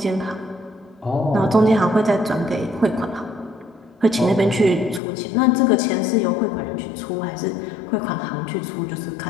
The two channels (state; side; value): drops out; right; at 5.0 s